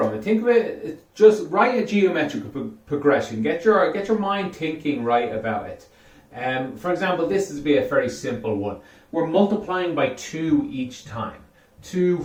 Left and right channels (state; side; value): identical; both; correlation 1.00